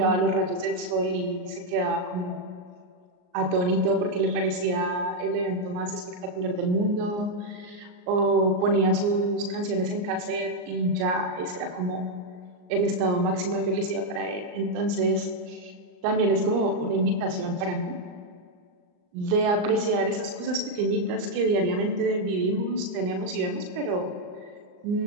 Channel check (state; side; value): late; left; 39 ms